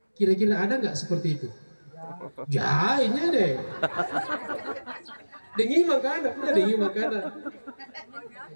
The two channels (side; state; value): both; inverted; correlation -1.00